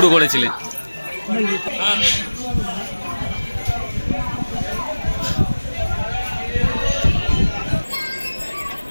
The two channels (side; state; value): both; inverted; correlation -1.00